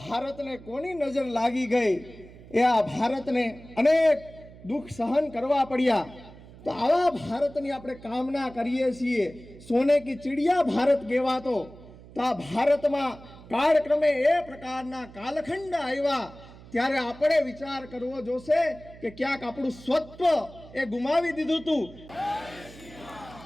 ભારતને કોની નજર લાગી ગઈ? એ આ ભારતને અનેક દુઃખ સહન કરવા પડ્યા. તો આવા ભારતની આપણે કામના કરીએ છીએ. સોને કી ચિડિયા ભારત કહેવાતો, તો આ ભારતમાં કાળક્રમે એ પ્રકારના કાલખંડ આવ્યા, ત્યારે આપણે વિચાર કરવો જોશે કે ક્યાંક આપણું સ્વત્વ એ ગુમાવી દીધું હતું.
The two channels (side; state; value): right; noise; hum, 19 dB below the sound